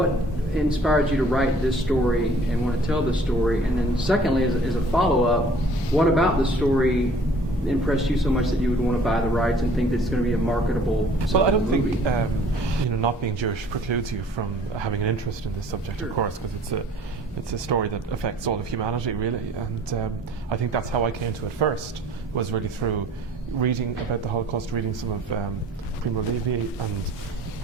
inspired you to write this story and want to tell this story? And then secondly, as a follow-up, what about the story impressed you so much that you would want to buy the rights and think that it's going to be a marketable Well, I don't movie? think not being Jewish precludes you from having an interest in this subject, Sure. of course, because it's a story that affects all of humanity, really. And I think that's how I came to it first, was really through reading about the Holocaust, reading some of Primo Levi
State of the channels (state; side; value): normal; both; correlation 0.53